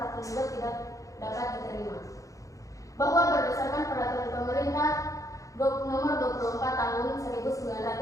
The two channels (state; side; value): late; right; 0.16 ms